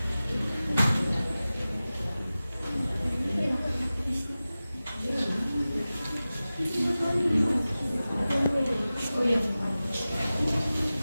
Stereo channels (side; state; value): both; inverted; correlation -0.96